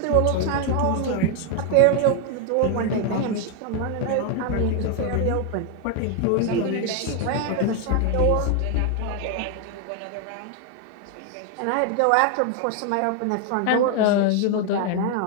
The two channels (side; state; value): both; different; correlation 0.01